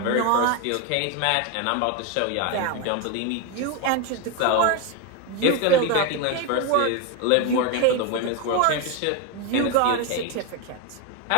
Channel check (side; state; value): both; different; correlation 0.02